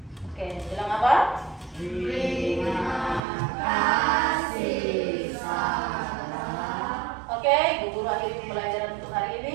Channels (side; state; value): left; drops out; at 3.2 s